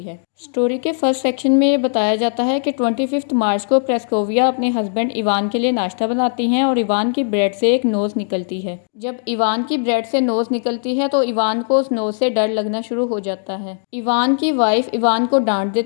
है। स्टोरी के फर्स्ट सेक्शन में ये बताया जाता है कि 25 मार्च को प्रेस्कोविया अपने हस्बैंड इवान के लिए नाश्ता बनाती हैं और इवान की ब्रेड से एक नोज़ निकलती है। जब इवान की ब्रेड से नोज़ निकलती है तो इवान को उस नोज़ से डर लगना शुरू हो जाता है। इवान की वाइफ इवान को डांट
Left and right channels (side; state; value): right; silent; digital silence